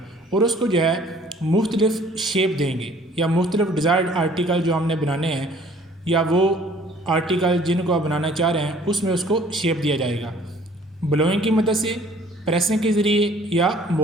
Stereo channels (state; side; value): normal; both; correlation 0.55